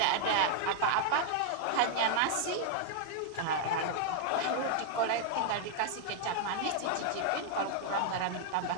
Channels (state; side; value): different; both; correlation 0.00